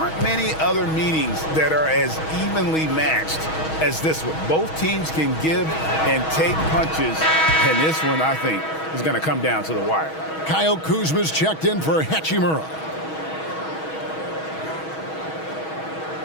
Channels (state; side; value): late; right; 6.3 ms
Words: many other meetings that are as evenly matched as this one. Both teams can give and take punches, and this one, I think, is going to come down to the wire. Kyle Kuzma's checked in for Hachimura.